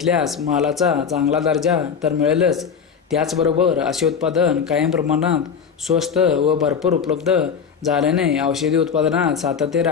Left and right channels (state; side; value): quieter; right; 6.7 dB